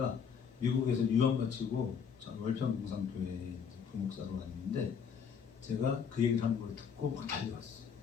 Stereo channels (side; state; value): right; quieter; 6.8 dB